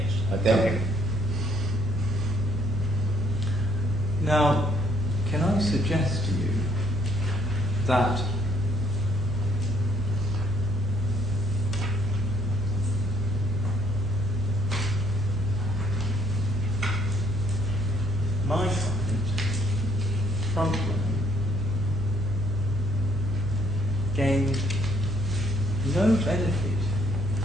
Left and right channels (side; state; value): right; noise; hum, 4 dB below the sound